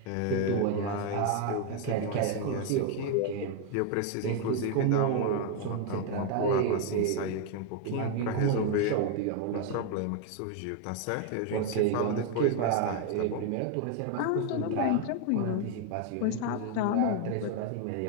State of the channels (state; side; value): different; both; correlation 0.01